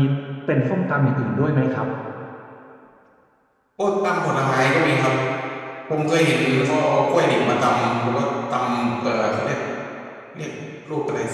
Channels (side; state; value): both; identical; correlation 1.00